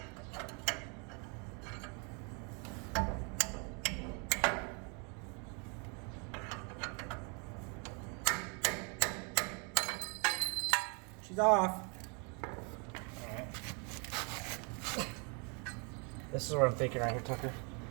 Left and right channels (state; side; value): quieter; left; 35.2 dB